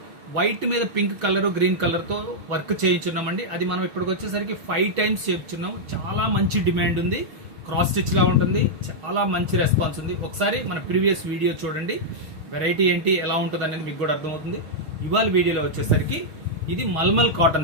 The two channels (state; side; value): late; left; 6.3 ms